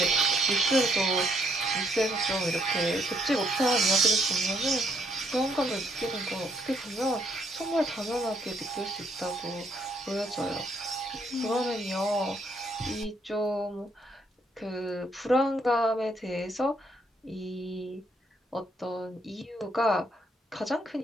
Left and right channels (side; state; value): both; normal; correlation 0.71